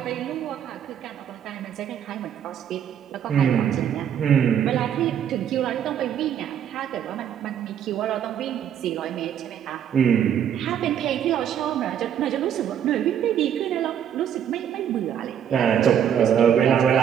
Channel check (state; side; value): quieter; left; 9.3 dB